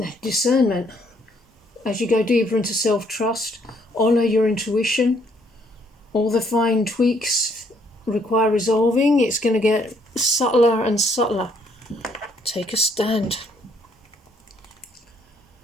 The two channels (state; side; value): normal; both; correlation 0.67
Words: discernment. As you go deeper into self-trust, honour your intuition. All the fine tweaks require resolving. It's going to get subtler and subtler. Take a stand.